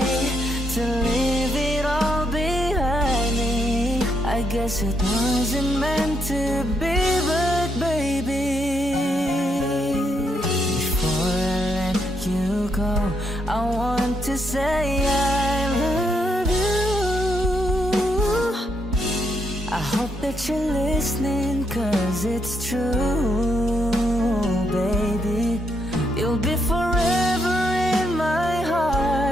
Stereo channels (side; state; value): both; normal; correlation 0.77